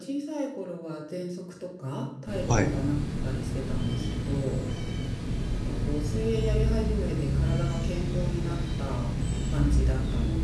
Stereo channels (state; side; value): identical; both; correlation 1.00